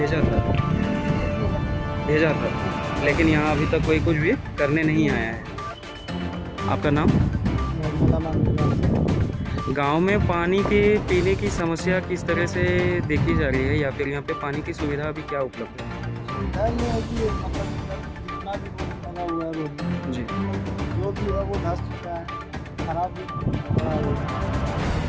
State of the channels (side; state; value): both; identical; correlation 1.00